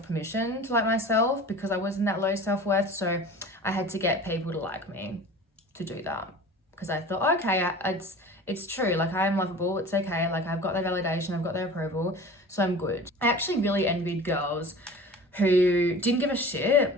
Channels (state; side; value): normal; both; correlation 0.40